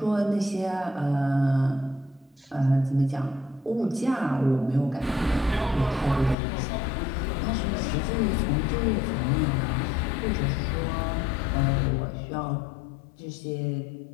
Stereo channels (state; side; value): drops out; right; at 6.4 s